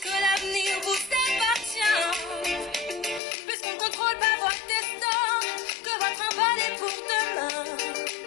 l'avenir vous appartient, puisqu'on ne contrôle pas votre destin, que votre envol est pour demain.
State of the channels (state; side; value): drops out; right; at 3.2 s